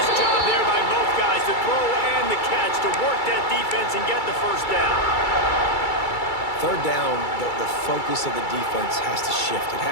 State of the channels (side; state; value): right; late; 2.3 ms